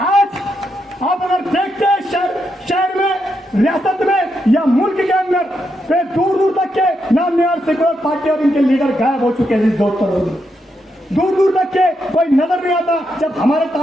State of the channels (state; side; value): normal; both; correlation 0.82